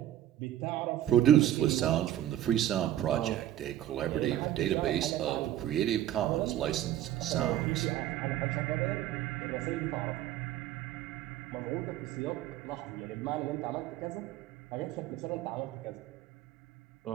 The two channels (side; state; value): left; quieter; 12.5 dB